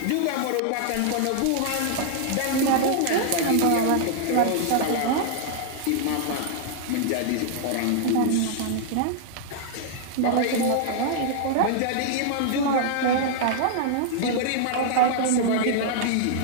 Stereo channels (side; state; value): both; different; correlation -0.01